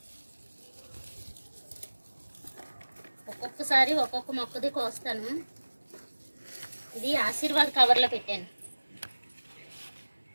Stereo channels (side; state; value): both; inverted; correlation -1.00